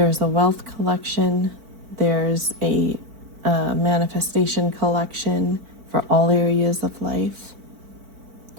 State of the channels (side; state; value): left; late; 4.5 ms